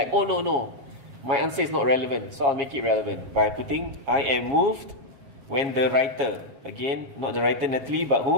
oh no. My answer is not relevant, so I'll make it relevant by putting, I am moved when the writer, again, not the writer Natalie, but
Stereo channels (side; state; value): left; late; 7.3 ms